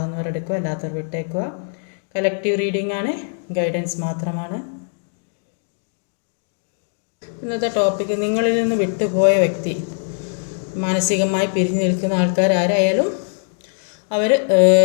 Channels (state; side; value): silent; right; digital silence